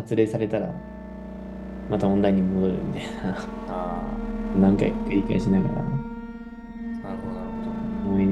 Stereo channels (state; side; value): identical; both; correlation 1.00